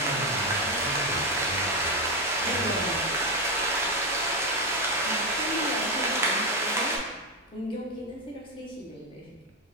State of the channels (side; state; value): both; normal; correlation 0.08